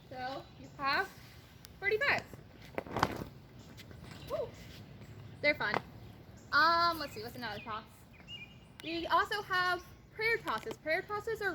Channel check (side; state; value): both; identical; correlation 1.00